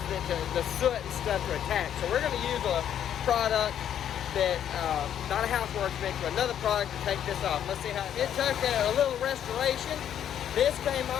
it to, the soot and stuff to attach. So we're going to use a product that, not a house wash mix, but another product to take this off. Let's see how it took a little restoration. This came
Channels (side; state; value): right; quieter; 9.9 dB